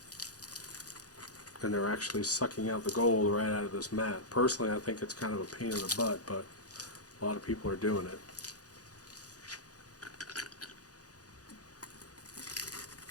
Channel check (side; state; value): right; late; 0.67 ms